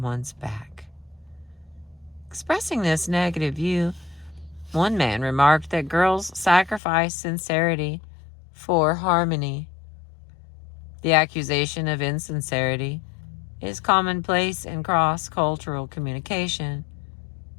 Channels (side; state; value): right; drops out; at 6.8 s